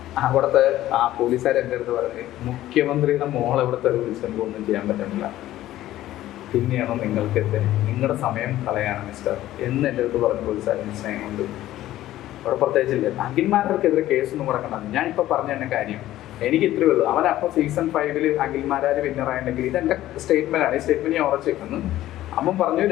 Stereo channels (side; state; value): right; quieter; 14.3 dB